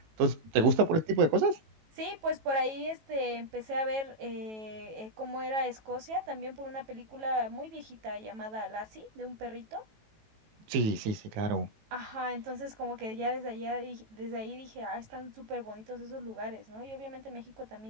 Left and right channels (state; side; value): late; left; 18 ms